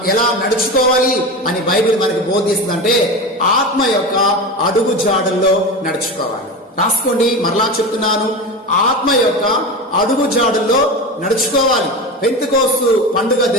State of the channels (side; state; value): both; normal; correlation 0.25